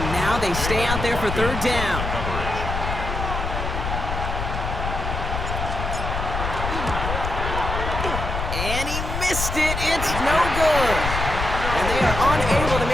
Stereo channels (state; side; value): noise; left; rumble, 3 dB below the sound